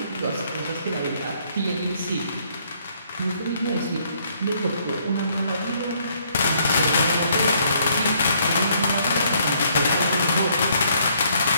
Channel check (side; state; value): both; inverted; correlation -0.67